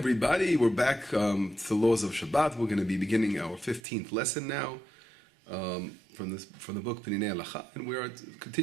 we're back to the laws of Shabbat. We're going to be beginning our 15th lesson now from the book Peninei Halacha, and we are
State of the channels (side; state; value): left; drops out; at 3.8 s